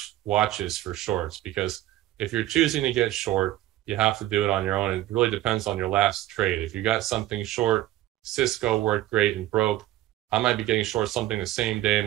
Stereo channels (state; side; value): quieter; left; 14.8 dB